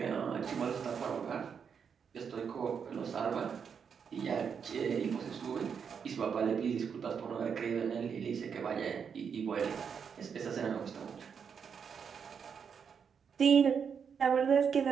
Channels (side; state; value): left; quieter; 6.8 dB